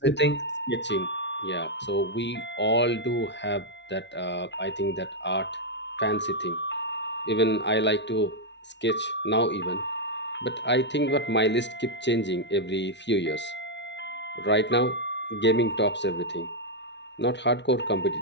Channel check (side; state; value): right; late; 0.51 ms